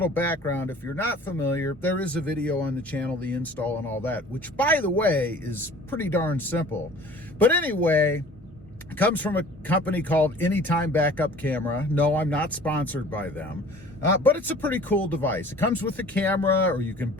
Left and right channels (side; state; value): both; normal; correlation 0.48